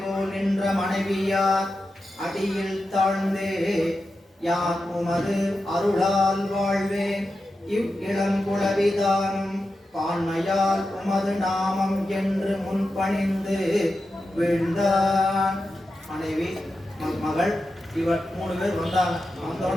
போல் நின்ற மனைவியார் அடியில் தாழ்ந்தே யான் உமது அருளால் வாழ்வேன் இவ் இளங்குளவிதானும் பான்மையால் உமது நாமம் என்று முன்பணிந்து வீழ்ந்தான். மனைவி மகள் இவர் 3 பேர் வந்தாங்க.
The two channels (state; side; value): normal; both; correlation 0.90